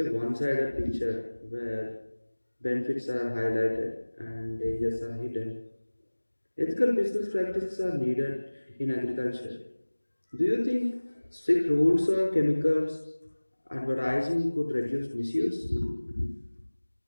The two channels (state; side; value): inverted; both; correlation -1.00